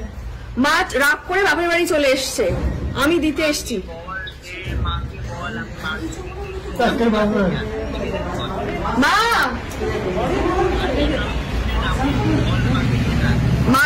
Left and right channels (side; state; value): both; identical; correlation 1.00